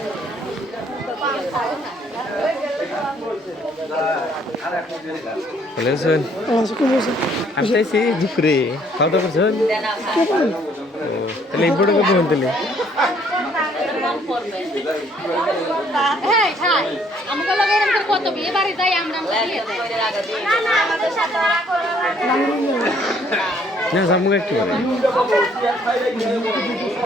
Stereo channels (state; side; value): normal; both; correlation 0.64